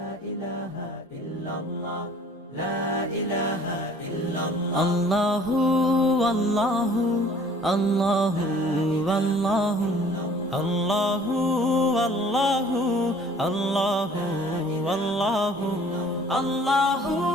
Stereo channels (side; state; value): both; normal; correlation 0.53